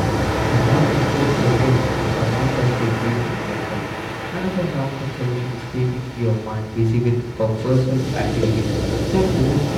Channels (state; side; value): identical; both; correlation 1.00